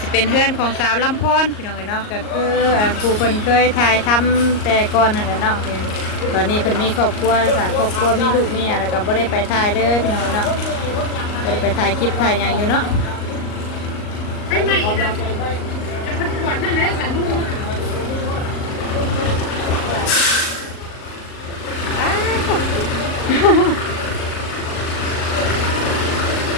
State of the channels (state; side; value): late; right; 38 ms